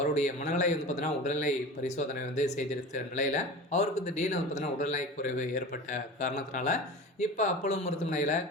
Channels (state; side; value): normal; both; correlation 0.33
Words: மனநிலை பார்த்தீங்கன்னா உடல்நிலை பரிசோதனை செய்திருக்கிற நிலையில் அவருக்கு திடீர்னு பார்த்தீங்கன்னா உடல்நிலை குறைவு ஏற்பட்ட காரணத்தினால இப்போ அப்போலோ மருத்துவமனையில்